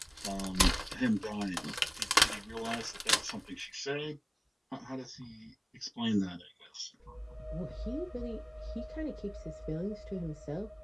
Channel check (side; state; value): both; identical; correlation 1.00